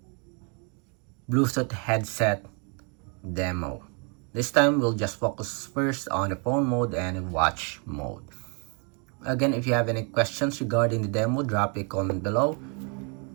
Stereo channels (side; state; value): left; quieter; 36.3 dB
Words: Bluetooth headset demo. This time we'll just focus first on the phone mode and watch mode. Again, if you have any questions regarding the demo, drop a comment below.